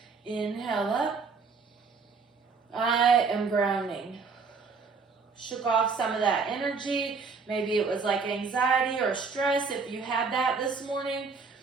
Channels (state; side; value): quieter; left; 4.8 dB